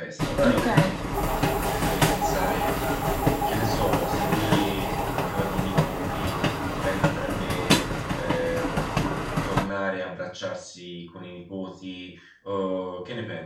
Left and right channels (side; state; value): both; identical; correlation 1.00